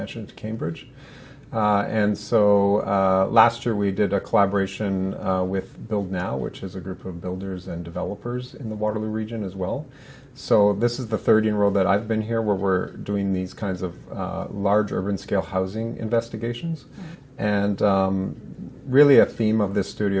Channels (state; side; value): identical; both; correlation 1.00